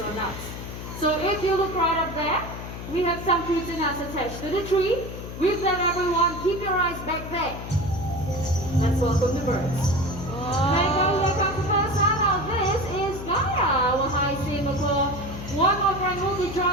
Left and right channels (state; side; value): noise; left; hum, 9 dB below the sound